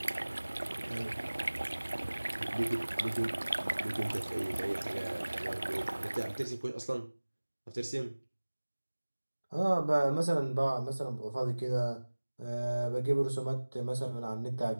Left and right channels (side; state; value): both; inverted; correlation -1.00